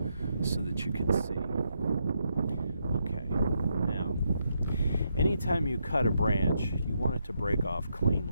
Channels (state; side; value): inverted; both; correlation -0.80